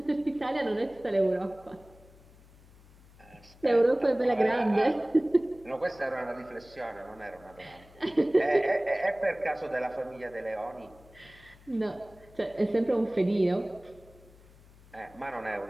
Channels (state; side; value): noise; left; hum, 25 dB below the sound